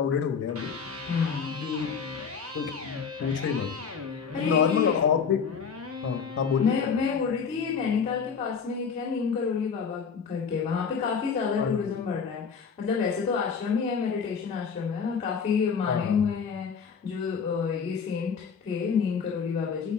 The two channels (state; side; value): quieter; right; 6.1 dB